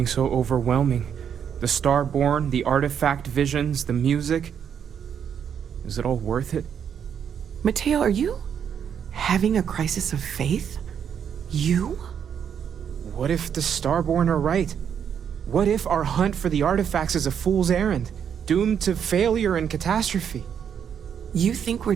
so overwhelming. The Starborn, the artifact visions, the music. Is it all worth it? Mateo, are you having a crisis of faith? You? What if the Starborn are right? What if our hunt for the artifacts is a fool's errand, doomed to failure and catastrophe? You think we're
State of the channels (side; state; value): left; quieter; 8.1 dB